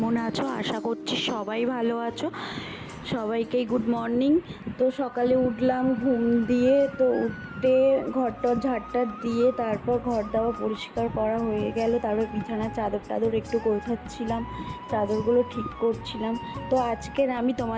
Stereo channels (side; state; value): both; identical; correlation 1.00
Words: আছো? আশা করছি সবাই ভালো আছো। সবাইকেই গুড মর্নিং। তো সকালে উঠলাম ঘুম দিয়ে, তো উঠে ঘরটর ঝাড়টার দিয়ে তারপর ঘর দাওয়া পরিষ্কার করা হয়ে গেল। তারপর বিছানার চাদর টাদর একটু গোছাচ্ছিলাম, চাদরগুলো ঠিক করছিলাম। তো আজকের আমি